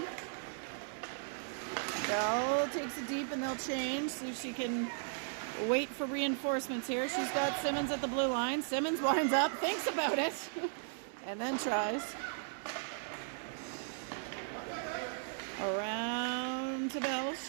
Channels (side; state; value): left; silent; digital silence